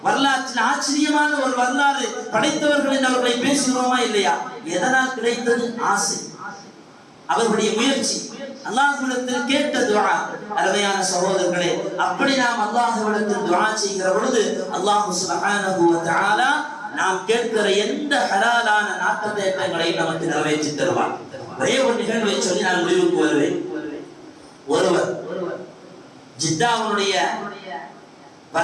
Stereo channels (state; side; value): identical; both; correlation 1.00